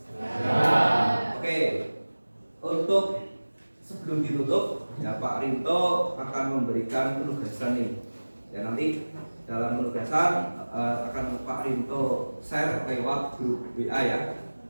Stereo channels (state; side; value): inverted; both; correlation -1.00